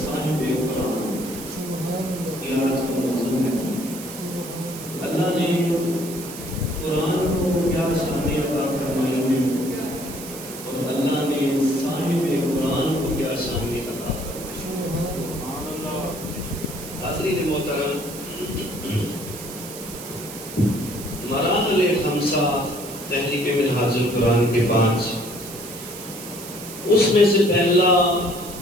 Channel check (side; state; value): right; noise; hiss, 12 dB below the sound